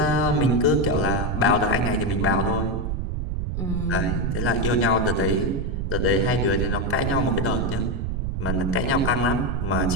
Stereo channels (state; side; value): noise; right; rumble, 2 dB below the sound